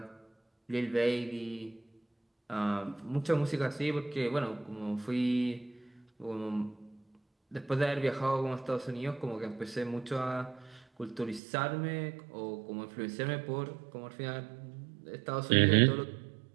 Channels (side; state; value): left; drops out; at 11.4 s